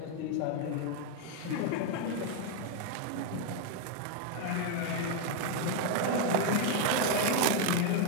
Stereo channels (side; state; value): both; different; correlation 0.01